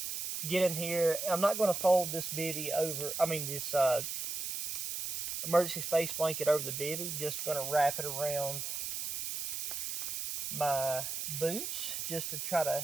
get in here. I'm not going to fold this bivy over. This emergency space blanket over the bivy. Just going to wrap it around my boots just to try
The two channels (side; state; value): right; noise; hiss, 3 dB below the sound